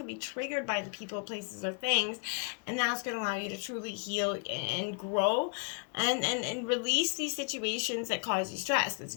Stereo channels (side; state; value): right; quieter; 37.1 dB